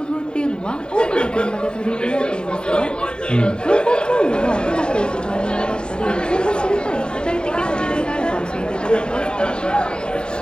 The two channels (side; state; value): right; late; 0.048 ms